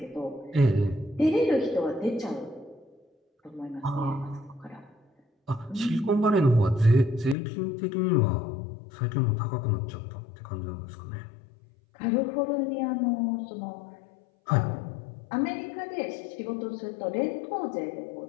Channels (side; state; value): right; drops out; at 7.4 s